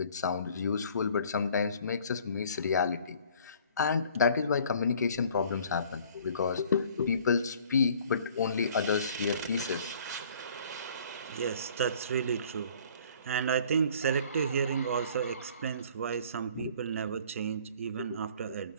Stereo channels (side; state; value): both; inverted; correlation -0.54